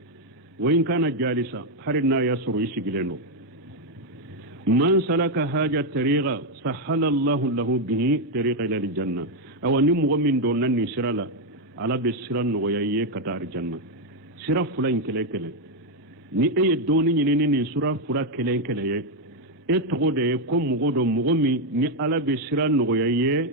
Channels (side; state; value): both; normal; correlation 0.02